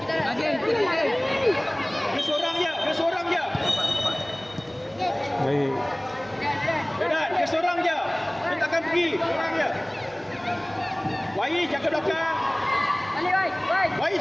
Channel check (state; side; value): noise; right; hum, 29 dB below the sound